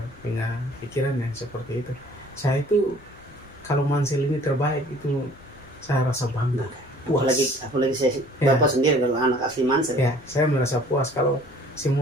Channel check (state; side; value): noise; left; rumble, 27 dB below the sound